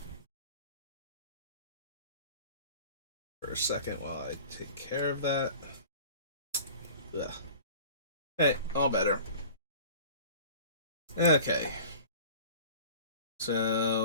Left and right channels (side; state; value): both; inverted; correlation -0.43